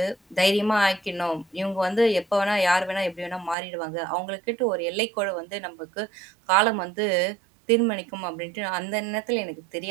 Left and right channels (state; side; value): drops out; left; at 3.6 s